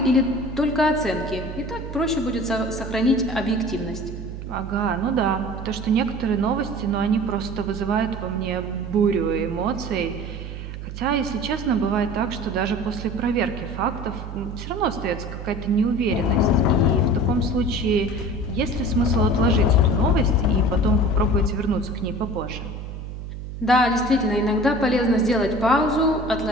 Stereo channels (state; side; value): noise; right; hum, 9 dB below the sound